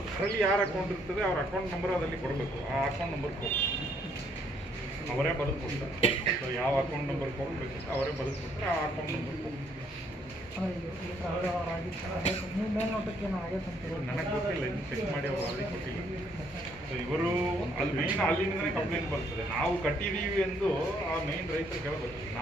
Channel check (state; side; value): normal; both; correlation 0.68